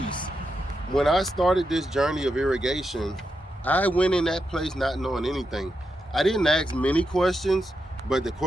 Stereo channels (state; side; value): normal; both; correlation 0.85